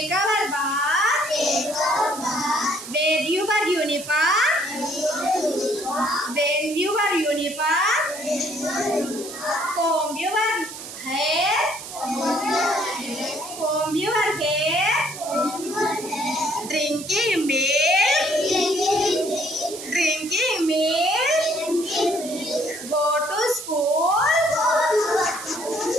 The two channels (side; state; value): right; noise; hiss, 11 dB below the sound